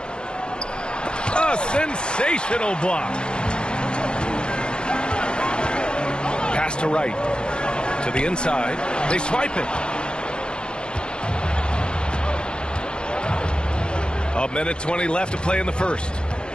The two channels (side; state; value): right; late; 0.050 ms